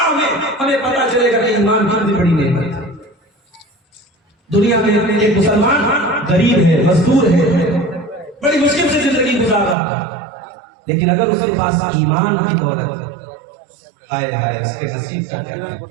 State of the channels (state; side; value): drops out; left; at 9.8 s